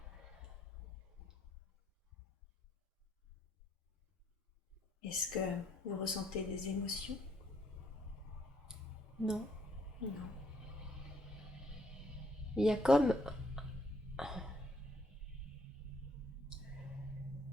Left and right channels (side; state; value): both; normal; correlation 0.69